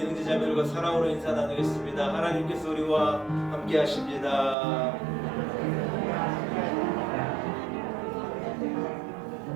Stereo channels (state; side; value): drops out; left; at 4.5 s